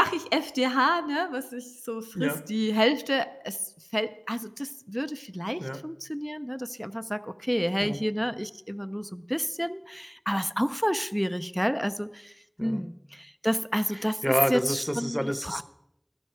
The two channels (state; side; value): identical; both; correlation 1.00